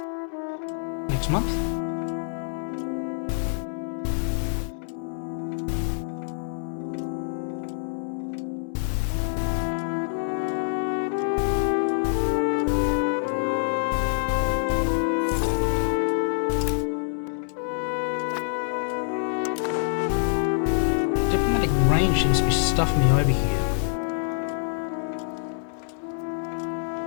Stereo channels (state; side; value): silent; right; digital silence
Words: next month. Diplomatic range seems to be stuffing me over here.